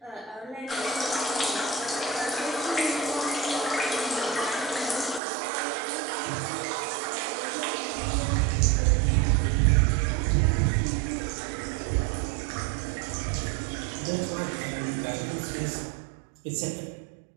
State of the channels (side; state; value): left; drops out; at 5.2 s